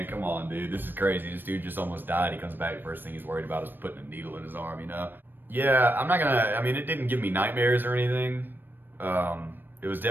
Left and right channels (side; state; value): left; late; 0.094 ms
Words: come on, dude. This is crazy. This dude just almost died. He comes back, first thing he's worried about is putting a needle in his arm, you know? Yeah, I'm not gonna, I mean, it didn't give me nightmares or anything. It was